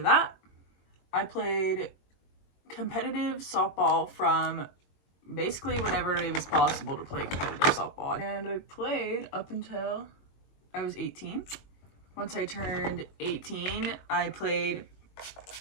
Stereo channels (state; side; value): late; right; 22 ms